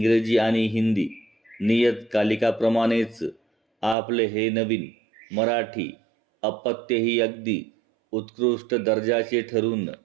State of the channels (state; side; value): drops out; left; at 4.0 s